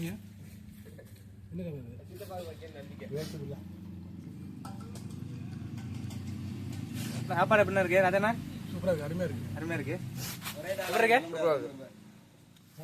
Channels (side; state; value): both; identical; correlation 1.00